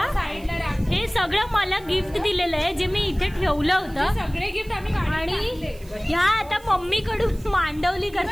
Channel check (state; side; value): noise; right; hiss, 25 dB below the sound